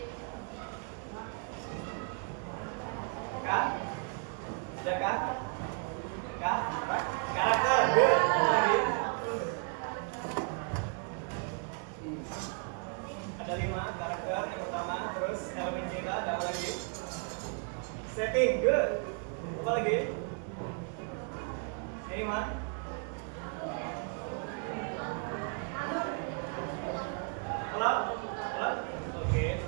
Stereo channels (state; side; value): quieter; left; 39.5 dB